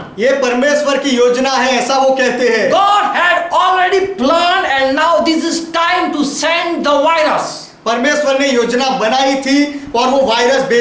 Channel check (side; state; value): both; identical; correlation 1.00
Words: ये परमेश्वर की योजना है, ऐसा वो कहते हैं। God had already planned and now this is time to send the virus. परमेश्वर ने योजना बनाई थी और वो वायरस